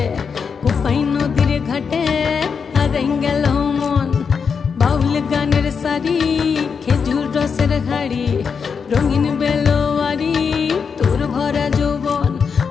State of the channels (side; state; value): right; quieter; 6.0 dB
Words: কোপাই নদীর ঘাটে হারাই গেল মন। বাউল গানের সারি খেজুর রসের হাড়ি রঙিন বেলোয়ারি তোর ভরা যৌবন।